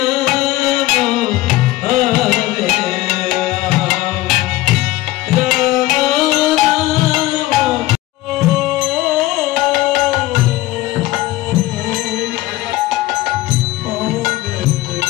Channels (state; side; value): quieter; right; 17.4 dB